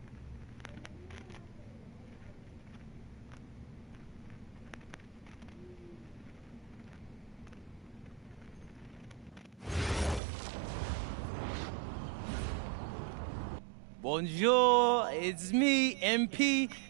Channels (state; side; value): drops out; left; at 10.2 s